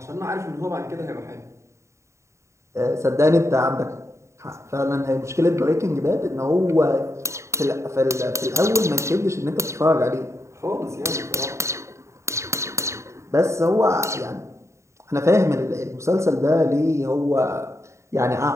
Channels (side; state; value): left; late; 0.14 ms